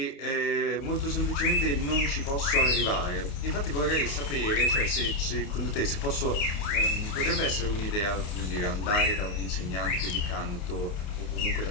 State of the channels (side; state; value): right; late; 28 ms